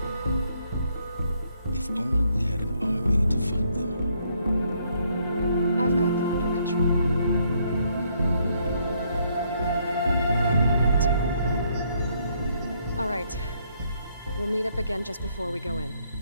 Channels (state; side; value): inverted; both; correlation -0.71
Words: If only we had an army to fight them. I've got that under control. All right. We'll meet up again just before we go in.